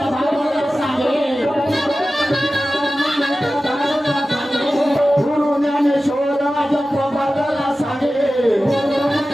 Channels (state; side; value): normal; both; correlation 0.95